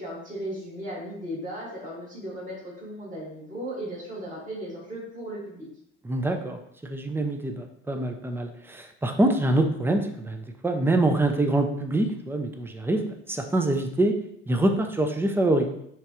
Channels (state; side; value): normal; both; correlation 0.71